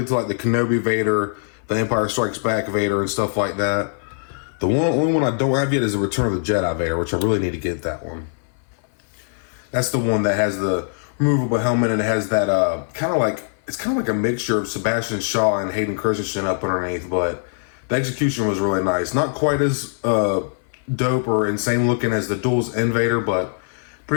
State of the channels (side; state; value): right; silent; 57 dB below the other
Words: to like the Kenobi Vader, the Empire Strikes Back Vader, and stuff like that. The only one I don't have yet is the Return of the Jedi Vader, which I really need to get that one. That's the one that has the removable helmet, and it has that kind of like a mixture of Sebastian Shaw and Hayden Christensen up underneath, but the execution was really nice. Not quite as dope or insane looking as the Duels End Vader, but